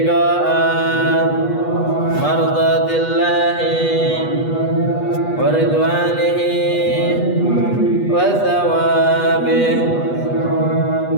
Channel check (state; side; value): late; right; 8.2 ms